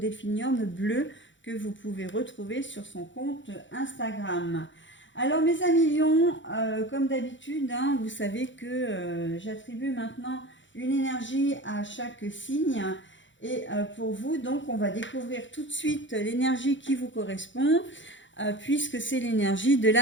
bleu que vous pouvez retrouver sur son compte Instagram. Alors mes amis lions, comme d'habitude, hein, vous savez que j'attribue maintenant une énergie à chaque signe. Et pour vous, donc, on va découvrir tout de suite l'énergie qui vous correspond, puisque c'est l'énergie de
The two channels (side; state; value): right; late; 0.54 ms